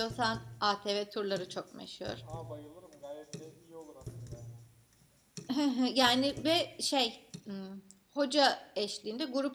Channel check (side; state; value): both; identical; correlation 1.00